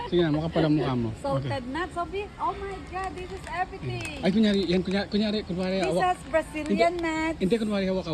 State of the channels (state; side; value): identical; both; correlation 1.00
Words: Sige na, makapal ang mukha mo. Salted nuts, Sophie. Oh my God, this is everything. Ay, kunyari, This hawak. is Brazilian nuts, Hindi, kunwari hawak